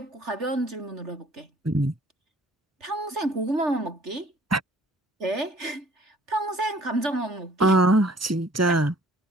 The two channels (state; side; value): normal; both; correlation 0.55